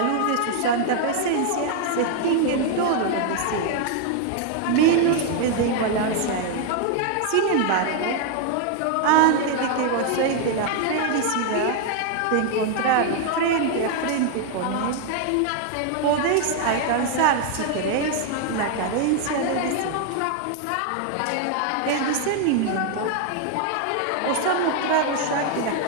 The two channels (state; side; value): different; both; correlation 0.00